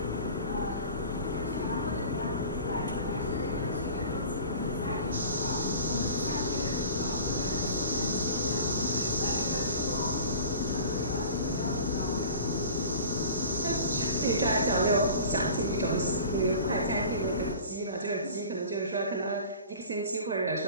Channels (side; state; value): both; inverted; correlation -0.40